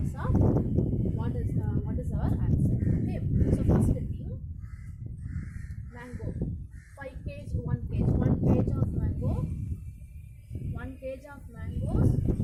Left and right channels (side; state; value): both; identical; correlation 1.00